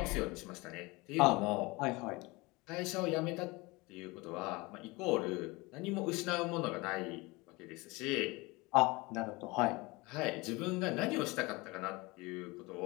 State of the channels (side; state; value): right; quieter; 24.0 dB